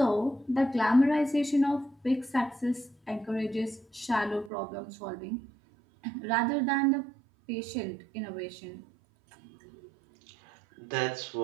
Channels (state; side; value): drops out; left; at 4.5 s